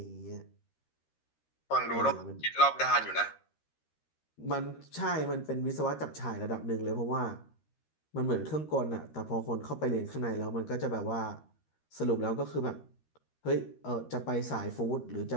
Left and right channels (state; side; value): late; right; 13 ms